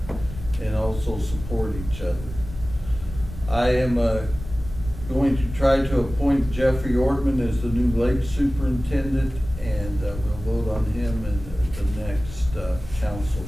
and also support each other. I am going to try to appoint Jeffrey Ortman as the new lake superintendent, and we'll vote on him in the next council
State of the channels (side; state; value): left; noise; rumble, 11 dB below the sound